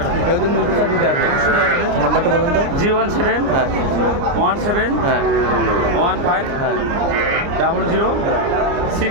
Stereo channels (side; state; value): left; late; 29 ms